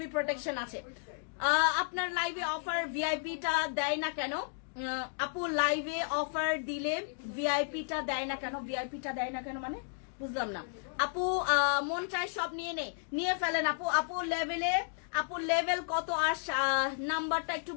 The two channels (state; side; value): silent; right; digital silence